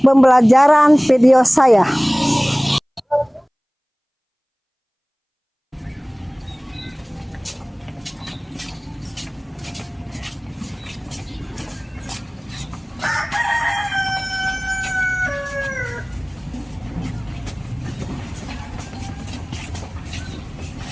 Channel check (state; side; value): identical; both; correlation 1.00